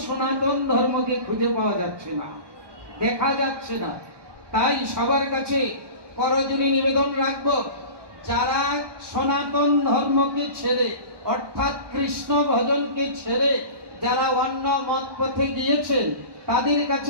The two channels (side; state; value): left; late; 1.2 ms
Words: সনাতন ধর্মকে খুঁজে পাওয়া যাচ্ছে না, দেখা যাচ্ছে না। তাই সবার কাছে করজোড়ে নিবেদন রাখবো, যারা সনাতন ধর্মকে ছেড়ে অর্থাৎ কৃষ্ণ ভজনকে ছেড়ে যারা অন্য মত পথে গিয়েছেন, তাদের